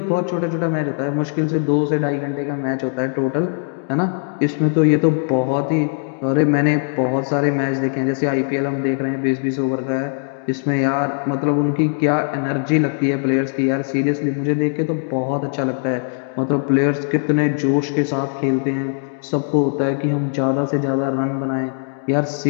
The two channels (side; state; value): right; silent; 66 dB below the other